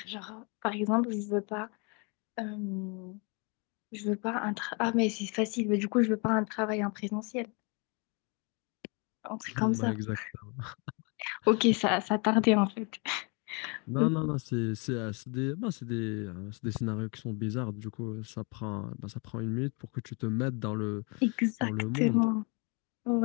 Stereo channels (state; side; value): quieter; right; 32.8 dB